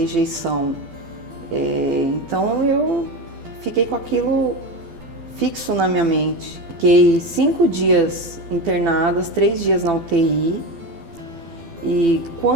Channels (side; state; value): left; late; 12 ms